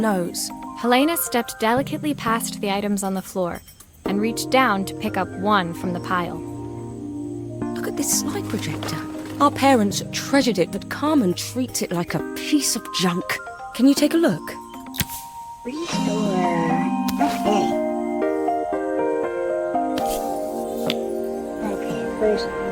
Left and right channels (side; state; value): both; identical; correlation 1.00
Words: Helena stepped delicately past the items on the floor and reached down to pick up one from the pile. Look at this slide projector. Our parents treasured it, but Carmen treats it like a piece of junk. Can you take a look? Restore. Okay. Okay, first